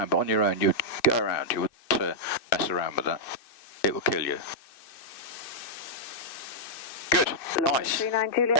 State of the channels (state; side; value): late; right; 2.6 ms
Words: but on your own, you'd go around, you wouldn't mess around with that. It will kill you. Good, nice,